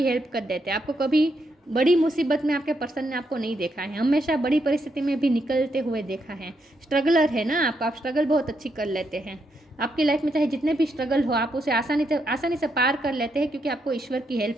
हेल्प कर देते हैं। आपको कभी बड़ी मुसीबत में आपके पर्सन ने आपको नहीं देखा है, हमेशा बड़ी परिस्थिति में भी निकलते हुए देखा है। स्ट्रगलर है ना आप स्ट्रगल बहुत अच्छी कर लेते हैं। आपकी लाइफ में चाहे जितने भी स्ट्रगल हो, आप उसे आसानी से पार कर लेते हैं, क्योंकि आपको ईश्वर की हेल्प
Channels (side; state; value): both; normal; correlation 0.79